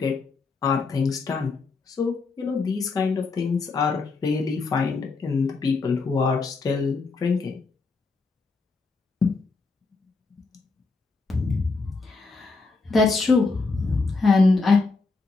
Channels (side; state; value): right; quieter; 4.0 dB